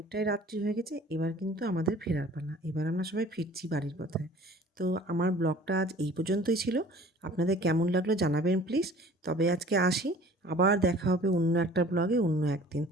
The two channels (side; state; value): both; normal; correlation 0.49